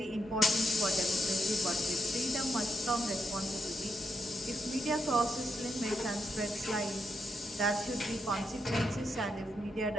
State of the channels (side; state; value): both; normal; correlation 0.81